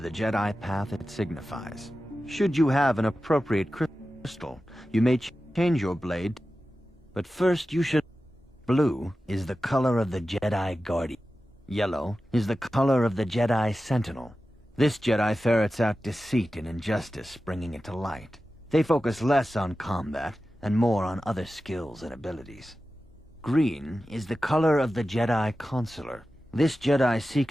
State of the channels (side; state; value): both; normal; correlation 0.94